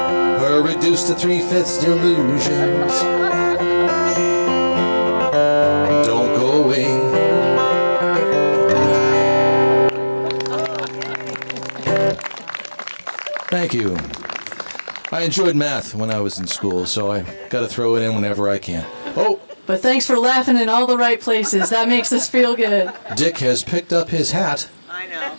her reduced to 3/5 delusions don't go away. Thank you. I enjoyed math when I was in school, so I got to throw it in whenever I can. Oh, But thanks for laughing in all the right places. That makes us feel good. Dick has picked up his hat I know.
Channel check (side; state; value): both; inverted; correlation -1.00